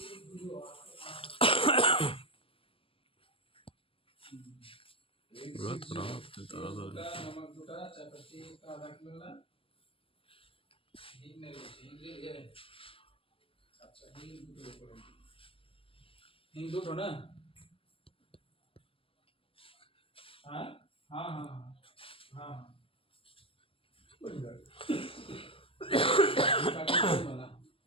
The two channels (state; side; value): late; right; 0.26 ms